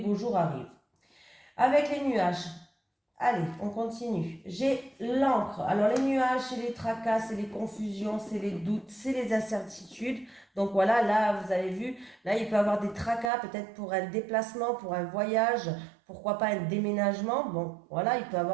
jours arrivent. Avec les nuages, allez, on continue. J'ai l'encre. Alors les nuages, c'est les tracas, c'est les confusions, c'est les doutes, c'est les incertitudes. Donc voilà, là, vous avez vu, là, il peut y avoir des tracas, peut-être pour un déplacement, pour un voyage, pourquoi pas un déménagement. Bon, voilà, il peut y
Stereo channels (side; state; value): left; drops out; at 13.3 s